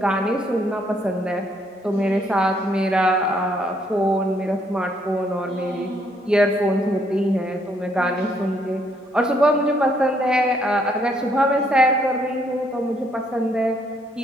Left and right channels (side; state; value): both; normal; correlation 0.70